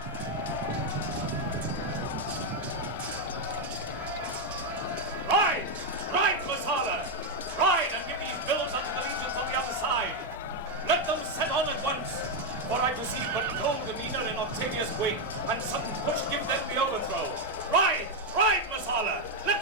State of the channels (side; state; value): both; normal; correlation 0.03